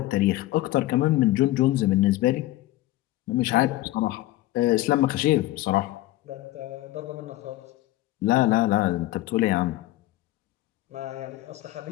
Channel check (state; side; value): quieter; right; 16.6 dB